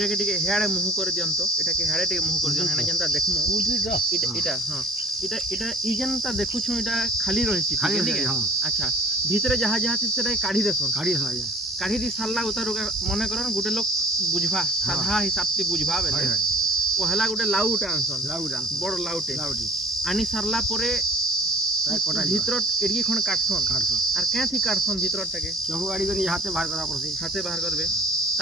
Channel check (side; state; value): both; normal; correlation 0.51